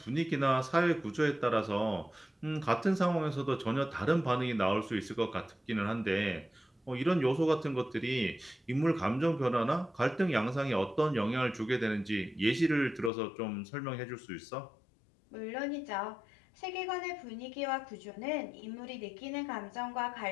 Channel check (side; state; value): right; drops out; at 13.1 s